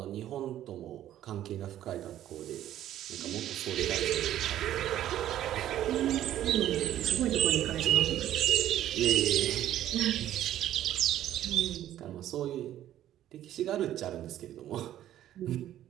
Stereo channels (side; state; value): left; quieter; 12.3 dB